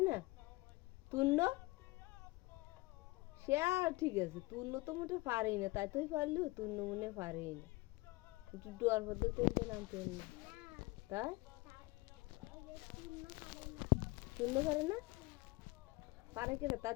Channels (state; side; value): quieter; right; 22.5 dB